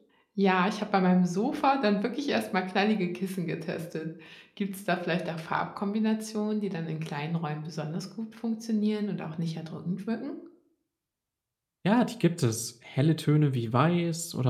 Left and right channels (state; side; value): identical; both; correlation 1.00